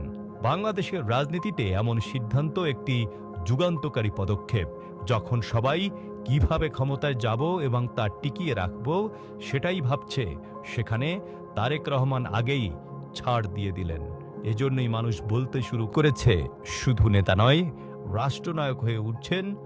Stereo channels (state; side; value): identical; both; correlation 1.00